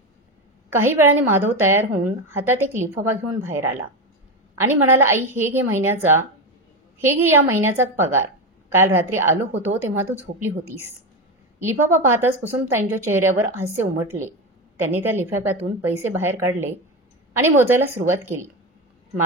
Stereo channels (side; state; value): both; normal; correlation 0.16